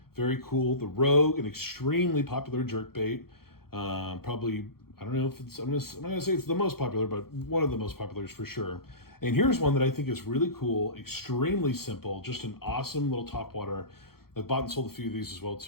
Very cool. The Rogue, an extremely popular jerkbait. Probably, I don't know if it's, I'm gonna say it's the most popular, but one of the most populars for sure. And here's one that I think is really cool, extremely simple, just an awesome little topwater. I've bought and sold a few of these as well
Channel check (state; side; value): late; right; 0.94 ms